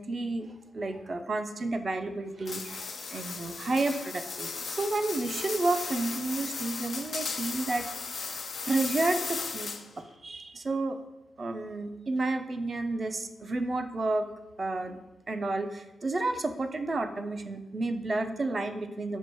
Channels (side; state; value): both; normal; correlation 0.90